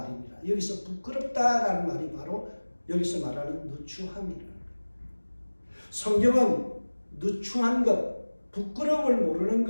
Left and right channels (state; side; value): inverted; both; correlation -1.00